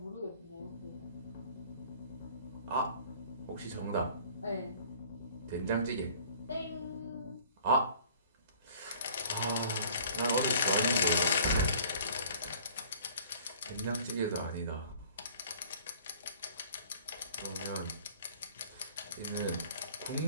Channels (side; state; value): both; inverted; correlation -0.51